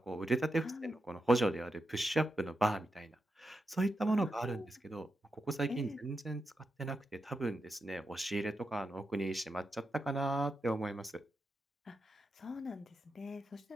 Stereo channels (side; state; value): both; normal; correlation 0.87